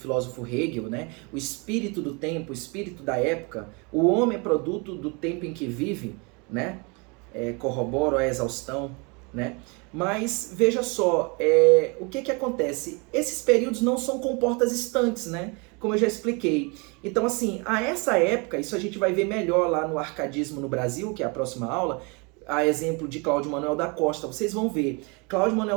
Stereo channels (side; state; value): left; quieter; 30.5 dB